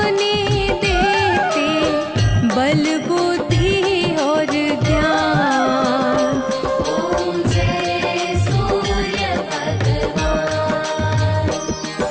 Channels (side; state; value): both; identical; correlation 1.00